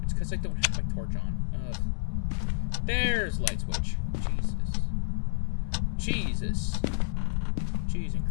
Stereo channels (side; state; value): right; silent; 58 dB below the other